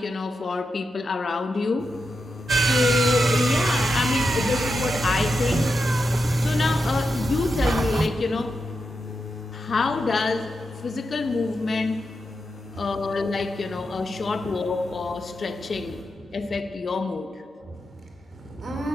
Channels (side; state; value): both; normal; correlation 0.87